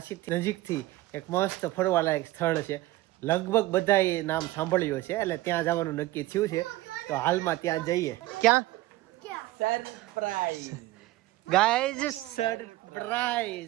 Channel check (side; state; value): left; quieter; 17.6 dB